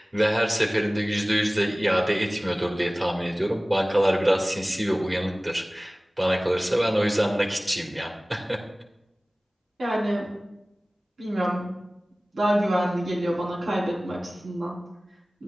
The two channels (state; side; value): normal; both; correlation 0.98